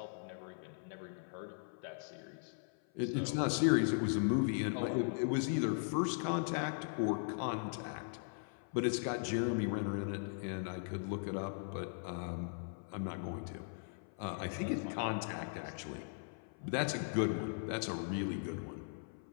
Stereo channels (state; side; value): silent; right; 52 dB below the other